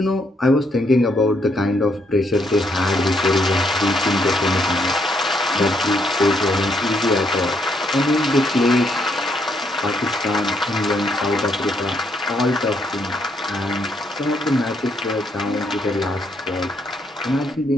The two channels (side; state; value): both; normal; correlation 0.73